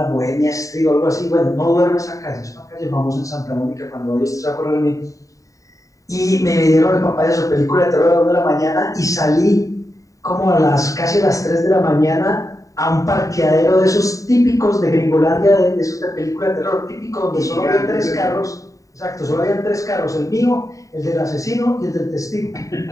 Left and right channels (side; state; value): right; late; 0.16 ms